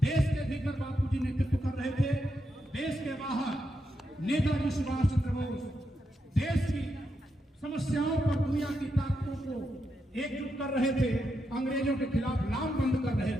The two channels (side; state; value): both; normal; correlation 0.84